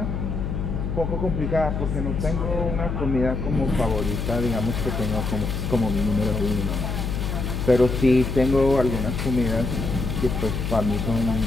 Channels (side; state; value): left; noise; hum, 3 dB below the sound